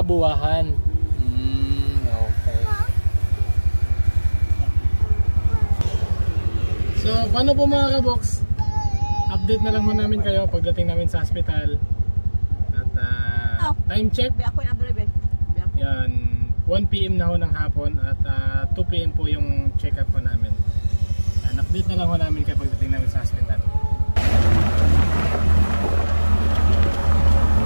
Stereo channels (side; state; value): both; inverted; correlation -1.00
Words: Buwahan. Okay. So, paano po mga kaboks? Update na lang ho namin kayo pagdating namin sa hospital. Time check. Yan, 1 PM na ho ng hapon at 2 PM po yung check-up po namin. Yan, update na lang ho namin kayo pagdating namin sa hospital.